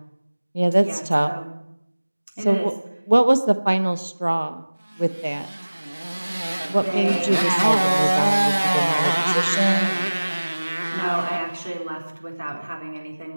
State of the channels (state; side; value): inverted; both; correlation -1.00